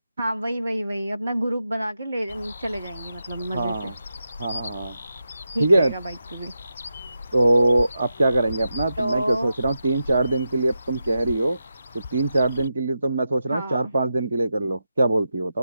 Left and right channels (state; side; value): inverted; both; correlation -0.88